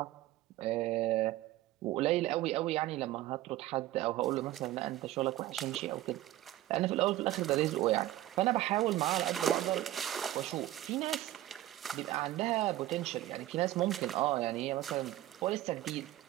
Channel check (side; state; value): left; quieter; 15.0 dB